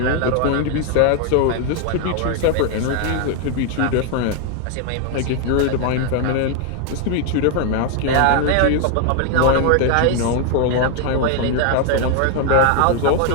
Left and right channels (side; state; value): both; different; correlation 0.00